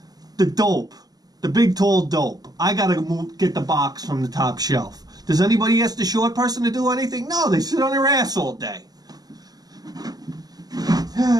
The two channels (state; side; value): late; left; 0.19 ms